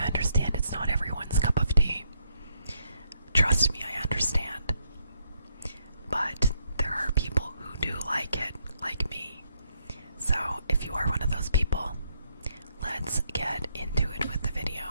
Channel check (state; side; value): inverted; both; correlation -0.75